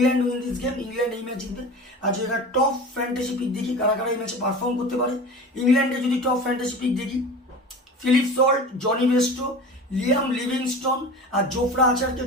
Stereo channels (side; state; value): both; normal; correlation 0.35